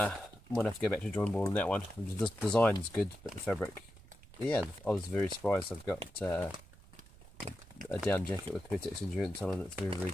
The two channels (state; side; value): noise; right; rumble, 21 dB below the sound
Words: might have to go back to the drawing board on that one. The design's good, but the fabric, yeah, I was very surprised. I've got a down jacket with Pertex Endurance on, and it's very, very